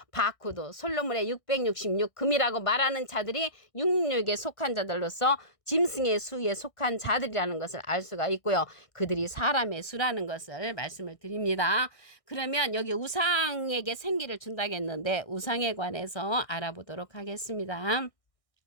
바코드, 솔로몬의 666 금이라고 말하는 자들이 666에 속한 자들로서 짐승의 수에 속한 자들이라는 것을 알 수가 있고요. 그들이 사람의 수라는 것을 말씀을 드립니다. 그러면 여기 우상에게 생기를 준다고 했는데 우상에 관해서 알아보도록 하겠습니다.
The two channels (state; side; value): late; right; 1.6 ms